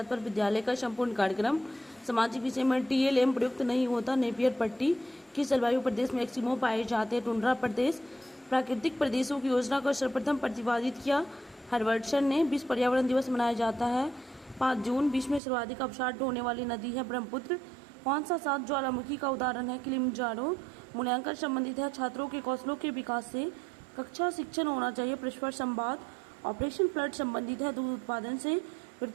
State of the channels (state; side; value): drops out; left; at 15.4 s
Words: विद्यालय का संपूर्ण कार्यक्रम। सामाजिक विषय में टीएलएम प्रयुक्त नहीं होता। नेपियर पट्टी किस जलवायु प्रदेश में एक्सिमो पाए जाते हैं? टुंड्रा प्रदेश। प्राकृतिक प्रदेशों की योजना को सर्वप्रथम प्रतिपादित किया हर्बर्टसन ने। विश्व पर्यावरण दिवस मनाया जाता है 5 जून। विश्व में सर्वाधिक अवसाद ढोने वाली नदी है ब्रह्मपुत्र। कौन सा 7 ज्वालामुखी का उदाहरण है? किलिमंजारो। मूल्यांकन संबंधित है छात्रों के कौशलों के विकास से। कक्षा शिक्षण होना चाहिए परस्पर संवाद। ऑपरेशन फ्लड संबंधित है दूध उत्पादन से।